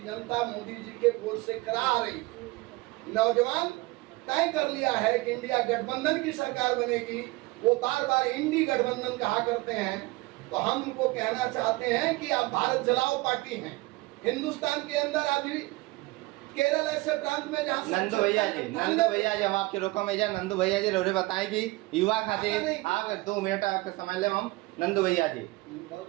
जनता मोदी जी के वोट से करा रही। नौजवान तय कर लिया है कि इंडिया गठबंधन की सरकार बनेगी। वो बार बार इंडी गठबंधन कहा करते हैं, तो हम उनको कहना चाहते हैं कि आप भारत जलाओ पार्टी हैं। हिंदुस्तान के अंदर अभी केरल ऐसे प्रांत में जहाँ नंदू भैया जी हम आपके रोको में जा। नंदू भैया जी रोरे बताएं कि युवा खातिर आप 2 मिनट आपका समय ले। हम नंदू भैया जी बहुत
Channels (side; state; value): left; quieter; 21.9 dB